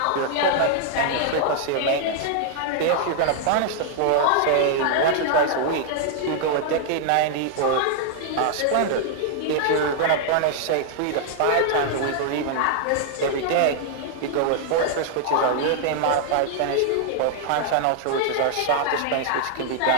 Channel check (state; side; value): different; both; correlation -0.01